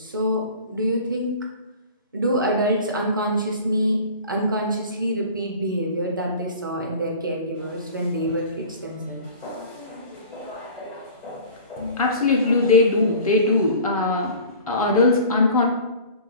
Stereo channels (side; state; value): both; inverted; correlation -0.42